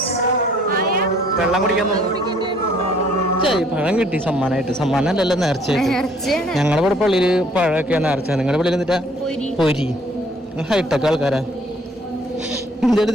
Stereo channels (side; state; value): both; normal; correlation 0.60